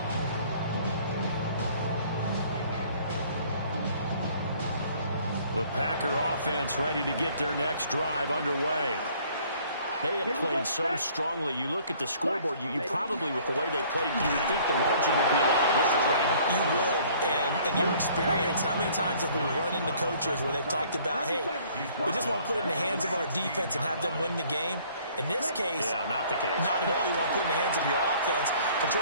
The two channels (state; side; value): inverted; both; correlation -0.57